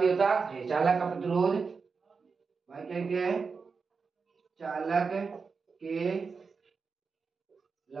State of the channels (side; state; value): left; quieter; 5.0 dB